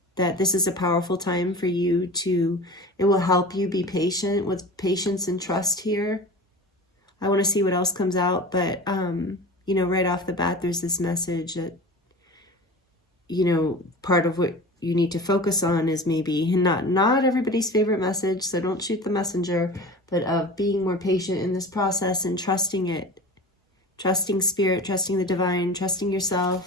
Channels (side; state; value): both; normal; correlation 0.35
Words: that this is a powerful time for you to, it will help you be patient, with patience and trust here. I want to see what else comes out, but, right off the bat, there's this message that, part of what you need to focus on is maybe not everybody's favorite message, so don't shoot the messenger, but of being more patient in this process and trusting it, trusting Spirit, trusting the divine, trusting